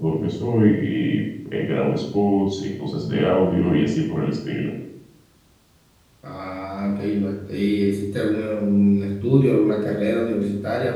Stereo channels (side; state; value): both; identical; correlation 1.00